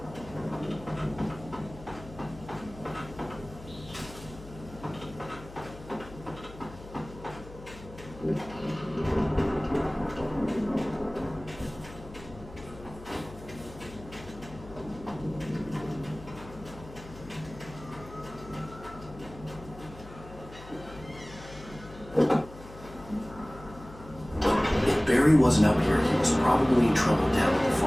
If Barry wasn't up here, he was probably in trouble down at the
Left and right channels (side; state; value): left; noise; hum, 16 dB below the sound